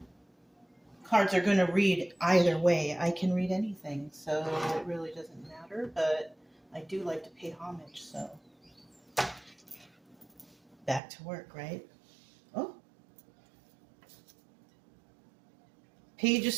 Cards are going to read either way. I can read anything, so it really doesn't matter, but I do like to pay homage, so back to work, right? Oh, Page of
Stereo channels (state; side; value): drops out; left; at 11.0 s